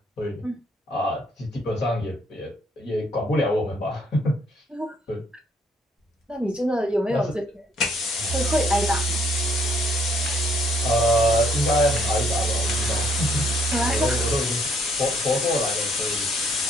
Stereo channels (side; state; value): both; normal; correlation 0.67